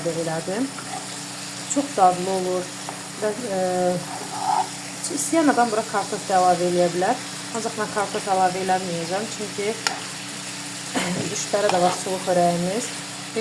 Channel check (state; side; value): identical; both; correlation 1.00